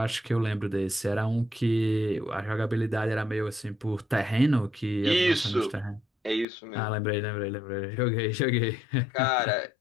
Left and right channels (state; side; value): drops out; right; at 6.5 s